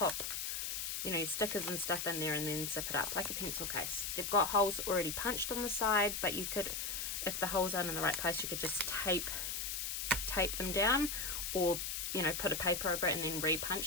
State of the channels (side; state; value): left; noise; hiss, 2 dB below the sound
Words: you know, your stickers and stuff in there and then zip it up like a pencil case. They've got holes already punched on the side, but you could, if the holes aren't in the right place, you could just tape them down, or, you know, put a paper over it and then